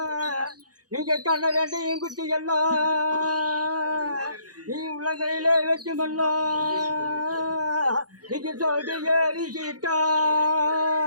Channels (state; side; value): late; left; 0.68 ms